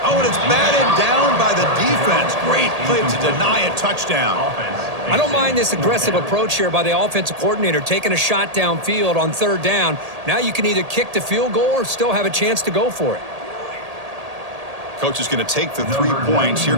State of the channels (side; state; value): left; late; 1.8 ms